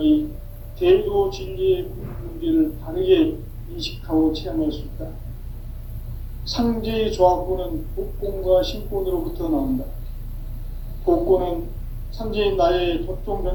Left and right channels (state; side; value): identical; both; correlation 1.00